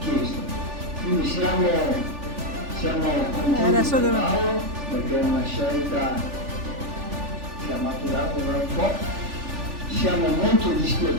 Quindi siamo contenti con Paolo perché è una scelta che ha maturato da un po'. Siamo molto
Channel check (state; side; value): late; left; 3.4 ms